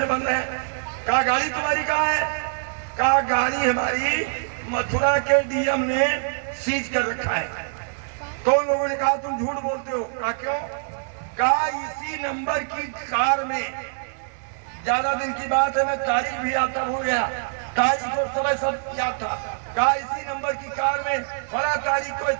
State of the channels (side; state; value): left; silent; digital silence